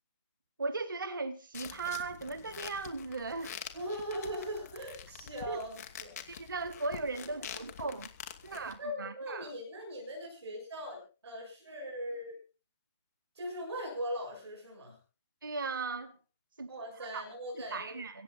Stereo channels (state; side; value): inverted; both; correlation -0.44